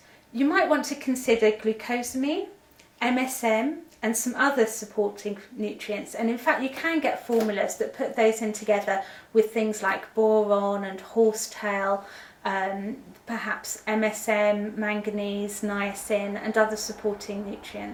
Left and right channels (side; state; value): both; identical; correlation 1.00